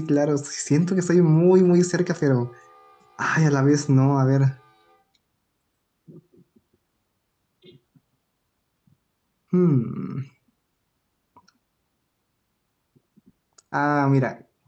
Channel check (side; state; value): both; identical; correlation 1.00